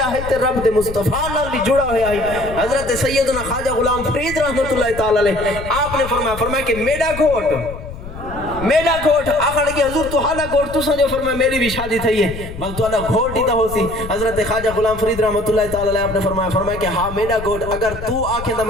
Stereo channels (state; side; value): noise; left; rumble, 11 dB below the sound